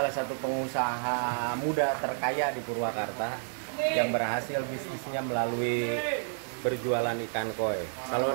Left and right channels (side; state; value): left; silent; digital silence